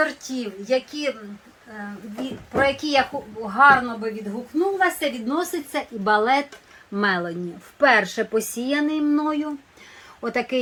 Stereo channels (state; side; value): identical; both; correlation 1.00